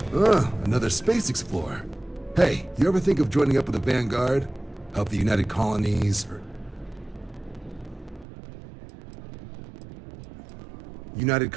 Another space explorer. Hey, you ever think of joining up with the Vanguard? Help the United Colonies, or... United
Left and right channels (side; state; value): left; drops out; at 8.2 s